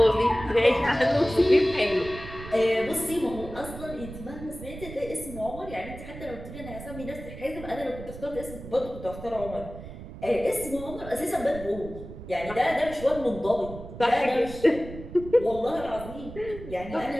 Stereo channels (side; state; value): right; noise; rumble, 13 dB below the sound